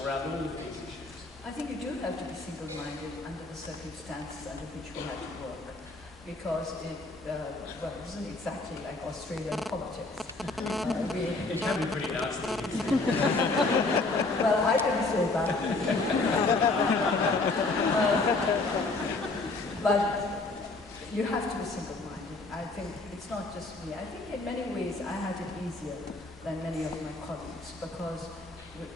around all of these issues? I think you do have to be single-minded under the circumstances under which we had to work. Because it isn't exactly like Australian politics. It can be pretty nasty. Well, I didn't say that. But you have to be single-minded. I think it's not just me. I think in many ways I had it easier than many of my colleagues because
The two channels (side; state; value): right; quieter; 3.4 dB